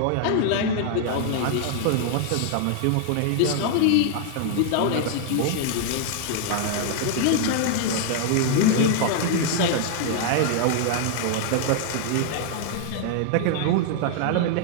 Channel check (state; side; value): different; both; correlation 0.00